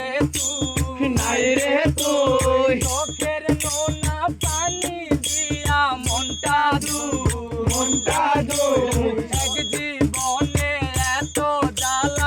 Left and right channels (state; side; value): identical; both; correlation 1.00